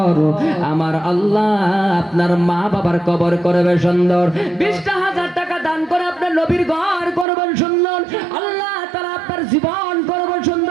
আমার আল্লাহ আপনার মা বাবার কবর করবে সুন্দর, 20,000 টাকা দান করে আপনার নবীর ঘর করবেন সুন্দর, আল্লাহ তাআলা আপনার জীবন করবে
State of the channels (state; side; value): drops out; left; at 7.2 s